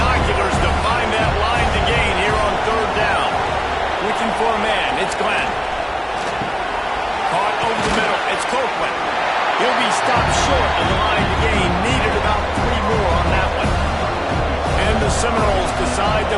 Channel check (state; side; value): identical; both; correlation 1.00